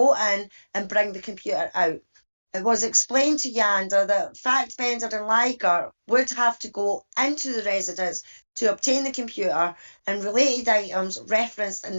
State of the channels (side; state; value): both; inverted; correlation -1.00